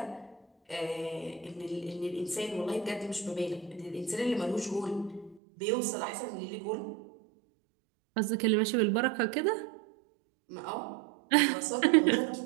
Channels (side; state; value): left; drops out; at 5.4 s